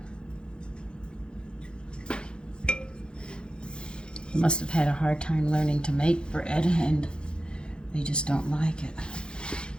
They must have had a hard time learning to make bread, and they just don't like it.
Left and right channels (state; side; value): late; right; 0.051 ms